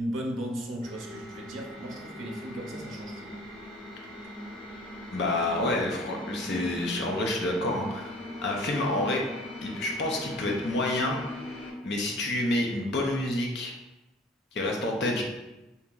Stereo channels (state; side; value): normal; both; correlation 0.47